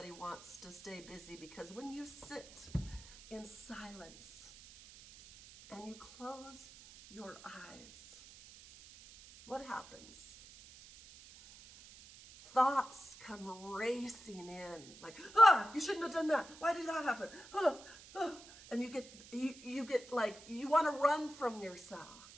wants to stay busy, because when you sit in silence and you close your eyes, what happens? Thoughts come racing in, like, you shouldn't have done that. Why did that happen? And you get like, you want to run from yourself.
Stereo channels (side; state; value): right; noise; hiss, 18 dB below the sound